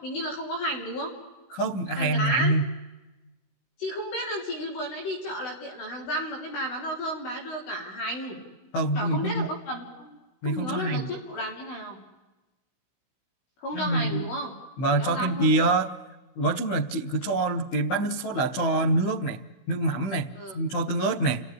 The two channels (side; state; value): right; late; 15 ms